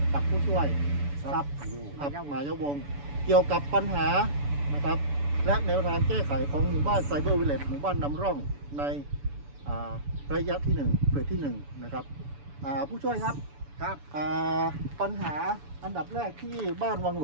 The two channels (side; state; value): left; late; 7.0 ms